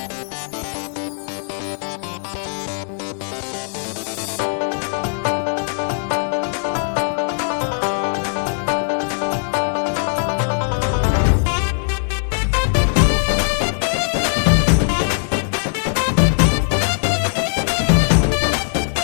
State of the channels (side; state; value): right; silent; digital silence